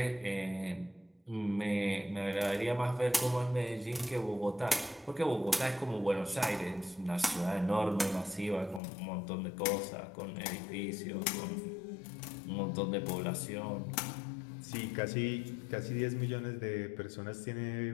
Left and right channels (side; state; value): right; drops out; at 8.8 s